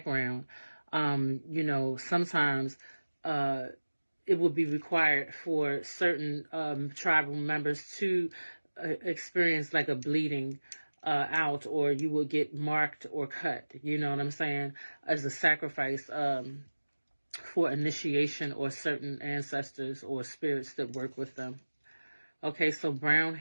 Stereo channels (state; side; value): inverted; both; correlation -1.00